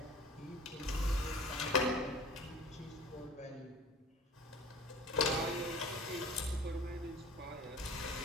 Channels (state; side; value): normal; both; correlation 0.43